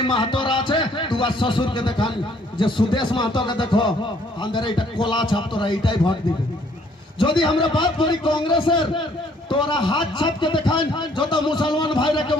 মাহাতোরা আছে তোমার শ্বশুরকে দেখান যে সুদেশ মাহাতোকে দেখো আমাদের এটা কোলা ছাপ, তোরা এইটাই ভোট দিবে। যদি আমরা বাদ করি কংগ্রেসের, তোরা হাত ছাপকে দেখান, যত মুসলমান ভাইরাকে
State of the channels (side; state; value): both; normal; correlation 0.63